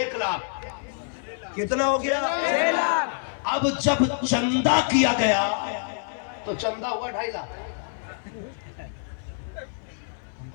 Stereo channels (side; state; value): right; silent; 57 dB below the other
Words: لاکھ۔ کتنا ہو گیا؟ 6 لاکھ۔ اب جب چندہ کیا گیا تو چندہ ہوا 2.5 لاکھ۔